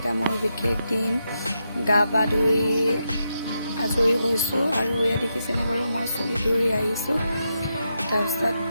মোৰ বিশেষ দিন গা পা ধুই আজৰি হৈছো আৰু এয়া দেখিছেনে বাৰু মই চুলি ধৰি আহিছো তাৰপিছত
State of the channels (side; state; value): both; inverted; correlation -0.84